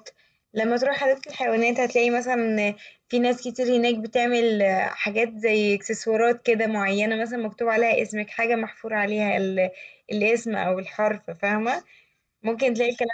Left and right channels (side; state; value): both; identical; correlation 1.00